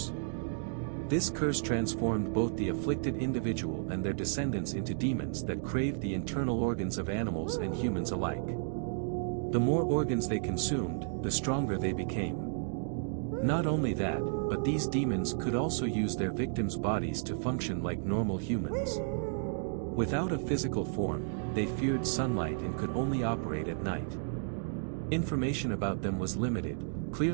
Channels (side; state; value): left; silent; digital silence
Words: This curse transformed both the afflicted individual and their descendants into demons that craved the internal organs of animals and humans alike. The more organs they consumed, the stronger they became. Not only that, but these demons could also use their victims' bodies to function like normal humans. Without a physical form, they feared sunlight and could only operate at night. Information about them was limited,